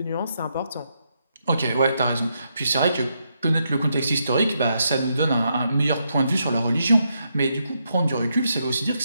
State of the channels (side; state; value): both; inverted; correlation -0.80